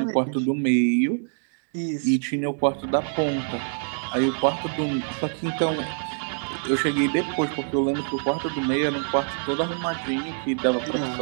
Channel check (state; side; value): silent; left; digital silence